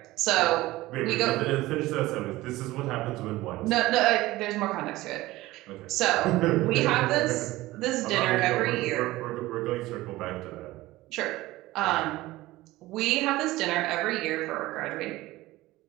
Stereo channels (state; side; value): quieter; left; 18.1 dB